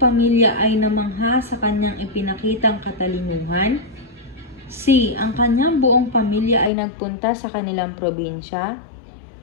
pamilya ay namangha sa kanyang ipinakitang katalinuhan. C. Ang kanyang buong pamilya ay nagpunta sa kanilang probinsya.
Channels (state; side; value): drops out; right; at 6.7 s